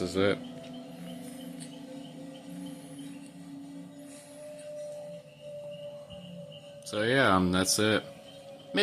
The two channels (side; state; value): both; identical; correlation 1.00